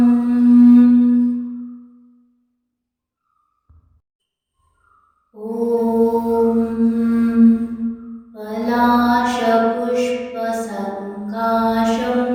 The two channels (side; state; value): both; identical; correlation 1.00